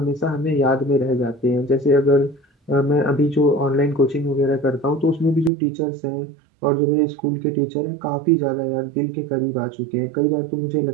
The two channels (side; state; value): left; drops out; at 5.5 s